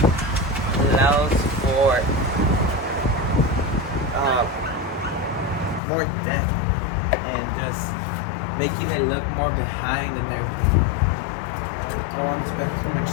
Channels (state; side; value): drops out; right; at 5.8 s